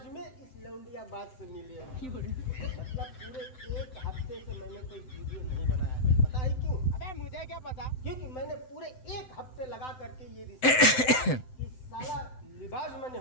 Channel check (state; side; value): late; right; 7.8 ms